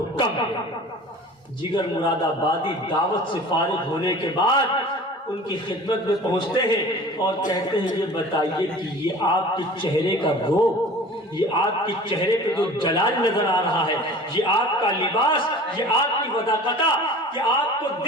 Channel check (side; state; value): both; normal; correlation 0.42